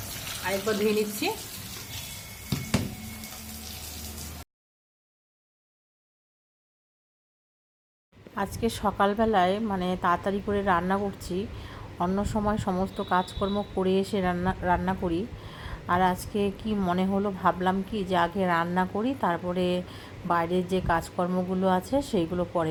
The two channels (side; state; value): both; identical; correlation 1.00